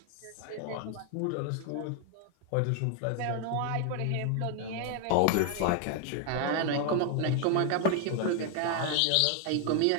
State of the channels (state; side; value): different; both; correlation 0.00